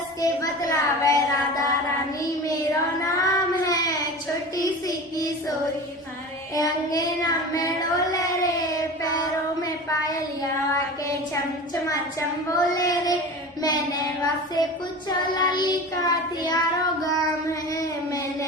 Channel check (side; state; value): both; normal; correlation 0.33